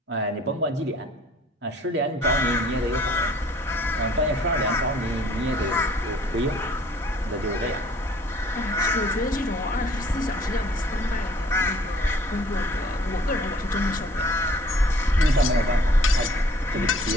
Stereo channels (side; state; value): both; normal; correlation 0.55